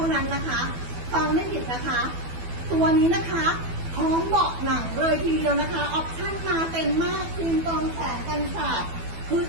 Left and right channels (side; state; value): left; late; 12 ms